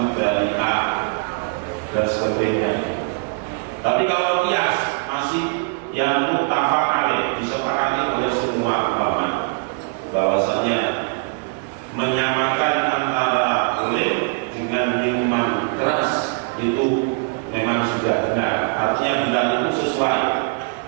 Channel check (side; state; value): left; quieter; 35.6 dB